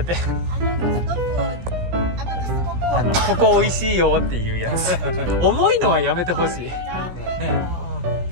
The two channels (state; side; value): late; left; 17 ms